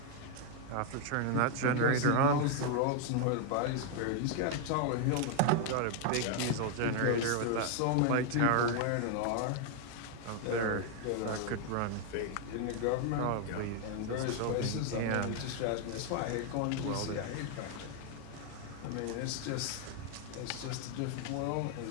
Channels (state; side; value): different; both; correlation 0.00